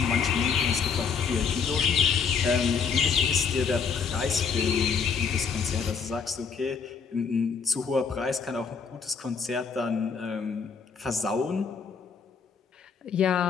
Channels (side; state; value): right; quieter; 5.9 dB